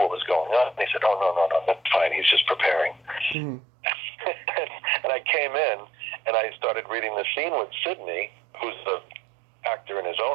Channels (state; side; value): drops out; left; at 3.4 s